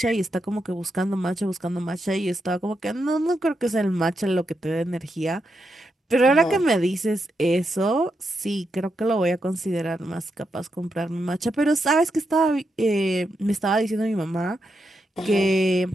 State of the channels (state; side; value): normal; both; correlation 0.84